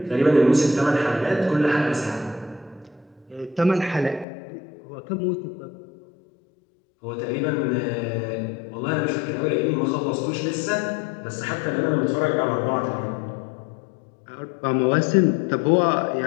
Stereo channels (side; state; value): right; drops out; at 4.2 s